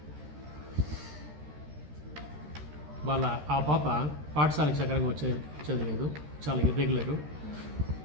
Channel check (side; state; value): left; late; 13 ms